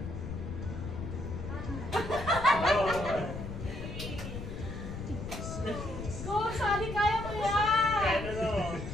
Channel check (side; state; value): left; noise; rumble, 7 dB below the sound